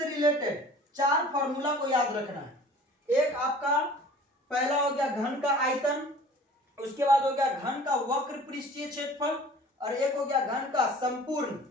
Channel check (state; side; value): normal; both; correlation 0.46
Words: रिलेटेड 4 फॉर्मूला को याद रखना है। एक आपका पहला हो गया घन का आयतन, उसके बाद हो गया घन का वक्र पृष्ठीय क्षेत्रफल, और एक हो गया घन का संपूर्ण।